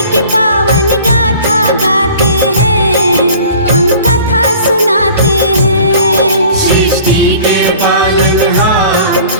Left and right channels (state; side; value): inverted; both; correlation -0.47